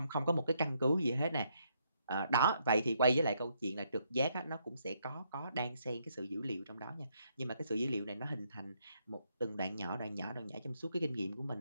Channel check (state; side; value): inverted; both; correlation -0.74